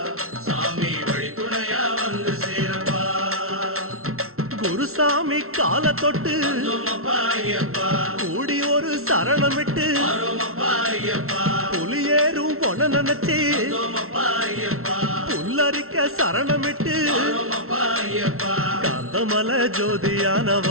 சாமி வழி துணையா வந்து சேரப்பா. குருசாமி கால தொட்டு கூடி ஒரு சரணமிட்டு புலியேறும் பொன நினைச்சு புல்லரிக்க சரணமிட்டு காந்தமலை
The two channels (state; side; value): late; left; 0.62 ms